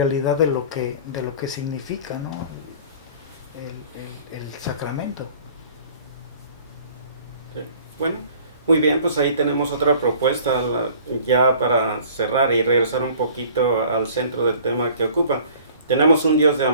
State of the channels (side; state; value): both; inverted; correlation -0.49